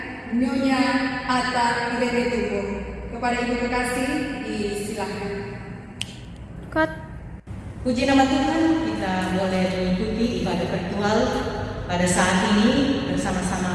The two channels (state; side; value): identical; both; correlation 1.00